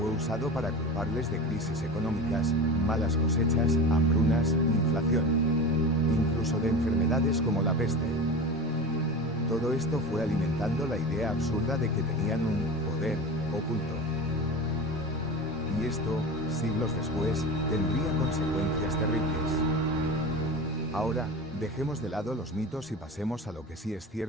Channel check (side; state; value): both; normal; correlation 0.29